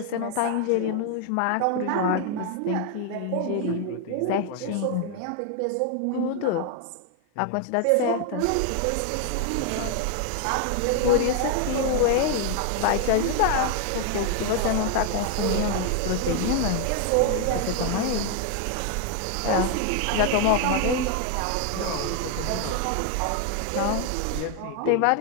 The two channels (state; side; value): different; both; correlation 0.01